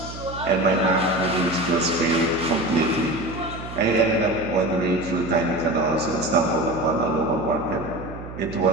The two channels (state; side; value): noise; right; hum, 12 dB below the sound